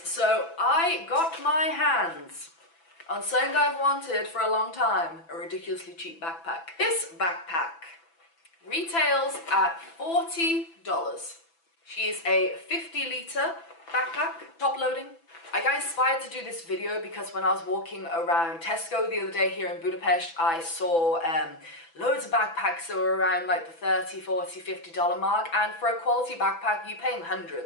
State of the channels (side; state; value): right; late; 6.0 ms